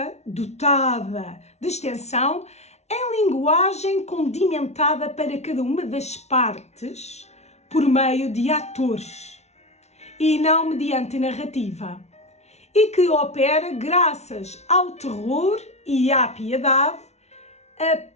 dotada de extensão, em linguagem condimentada para cada uma das partes por meio de atores e não mediante narrativa, e que opera graças ao terror e à piedade, a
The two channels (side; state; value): right; late; 0.32 ms